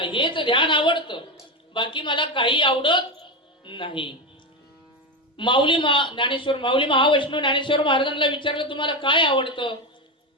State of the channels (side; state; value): both; normal; correlation 0.14